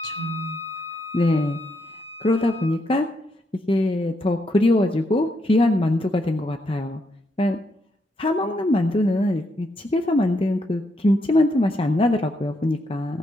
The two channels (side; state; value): both; normal; correlation 0.78